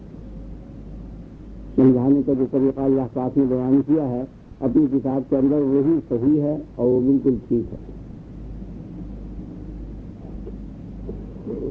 سمجھانے کا جو طریقہ اللہ پاک نے بیان کیا ہے اپنی کتاب کے اندر وہی صحیح ہے اور وہ بالکل ٹھیک ہے.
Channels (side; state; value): both; identical; correlation 1.00